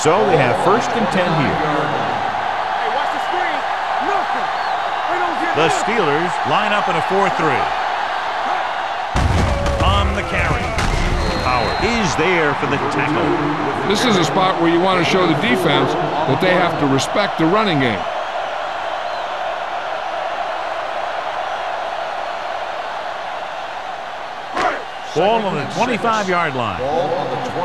So they have first and 10 here. Hey, watch the screen. Nothing. They don't get The this. Steelers line up in a 4-3. On the carry. Howard is there for the tackle. This is a spot where you want to show the defense that they have to respect the running game. Ball on the 25-yard line. Ball on the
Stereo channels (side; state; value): both; identical; correlation 1.00